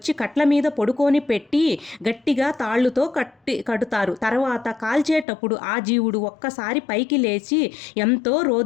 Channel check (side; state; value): right; drops out; at 5.2 s